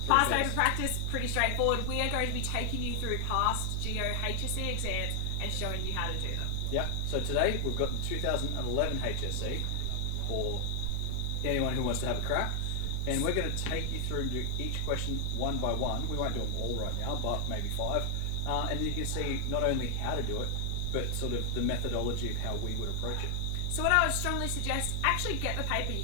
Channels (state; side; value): different; both; correlation 0.00